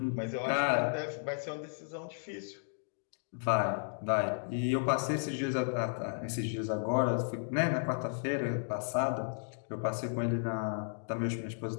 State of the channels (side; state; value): right; silent; digital silence